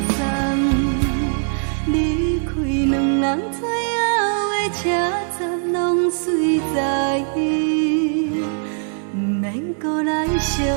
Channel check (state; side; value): silent; left; 65 dB below the other